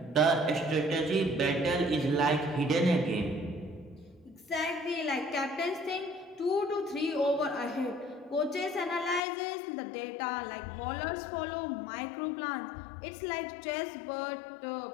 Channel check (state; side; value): drops out; right; at 9.2 s